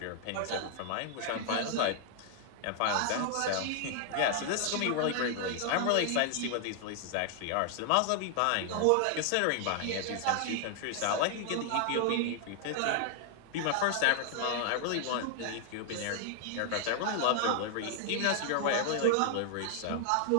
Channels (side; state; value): both; different; correlation 0.00